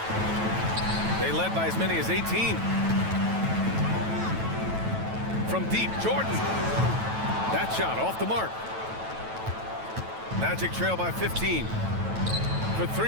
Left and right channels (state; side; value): late; left; 9.1 ms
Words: They led by as many as 18. From deep, Jordan. That shot off the mark. Magic trail by 15. For